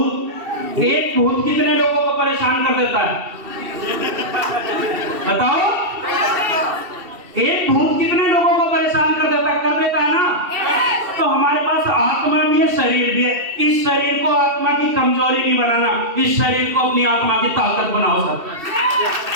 एक भूत कितने लोगों को परेशान कर देता है? बताओ, एक भूत कितने लोगों को परेशान कर देता है ना? तो हमारे पास आत्मा भी है, शरीर भी है। इस शरीर को आत्मा की कमजोरी नहीं बनाना, इस शरीर को अपनी आत्मा की ताकत बनाओ सब।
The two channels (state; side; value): late; left; 2.7 ms